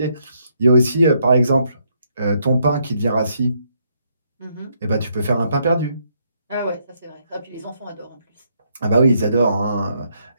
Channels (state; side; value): inverted; both; correlation -0.74